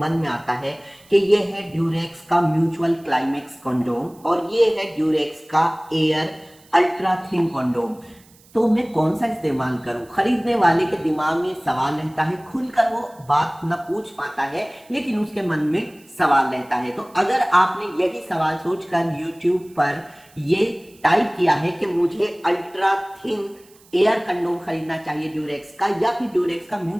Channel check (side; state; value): right; noise; hiss, 28 dB below the sound